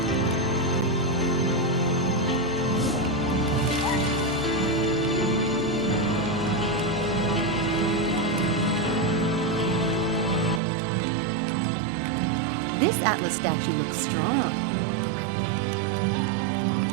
This Atlas statue looks strong.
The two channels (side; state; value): left; drops out; at 10.6 s